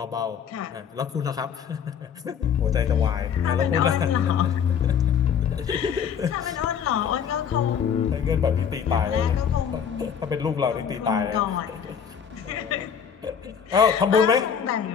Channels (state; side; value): quieter; right; 7.6 dB